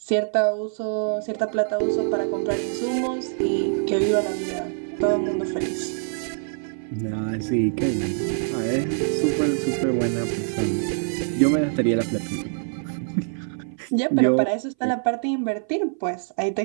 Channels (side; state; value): left; silent; 58 dB below the other